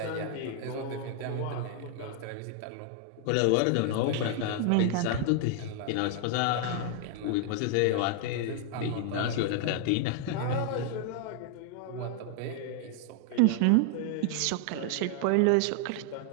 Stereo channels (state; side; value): different; both; correlation 0.00